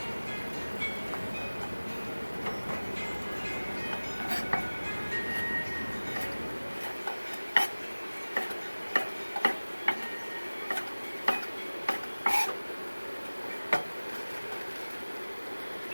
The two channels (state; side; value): inverted; both; correlation -1.00